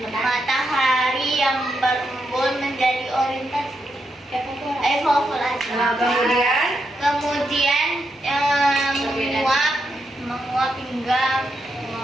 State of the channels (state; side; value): normal; both; correlation 0.83